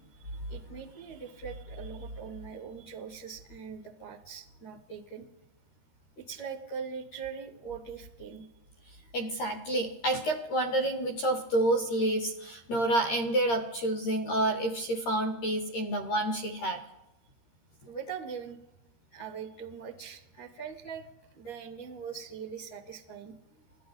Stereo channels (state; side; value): late; right; 13 ms